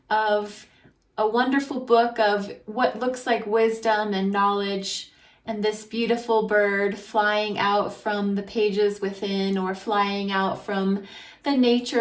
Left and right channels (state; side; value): identical; both; correlation 1.00